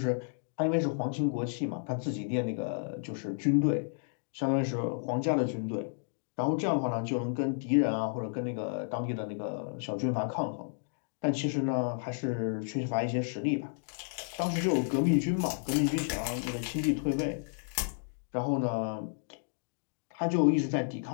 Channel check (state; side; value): silent; right; digital silence